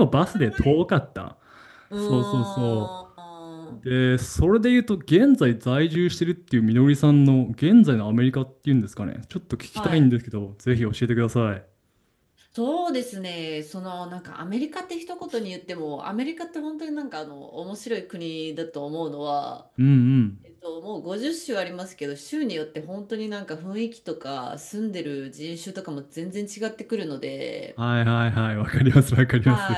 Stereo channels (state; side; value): identical; both; correlation 1.00